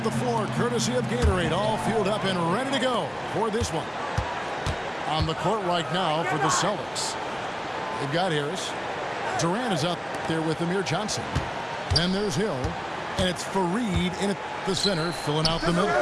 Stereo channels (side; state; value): both; identical; correlation 1.00